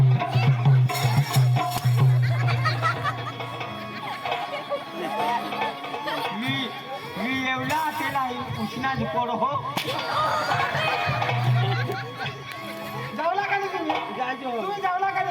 मी एवढा त्याला उष्णाच पडो हो जावला का नाही तुम्ही जायचो तुम्ही जावला का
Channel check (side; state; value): both; identical; correlation 1.00